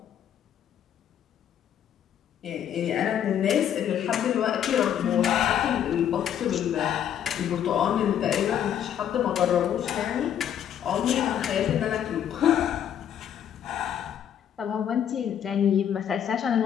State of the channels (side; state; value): right; quieter; 9.6 dB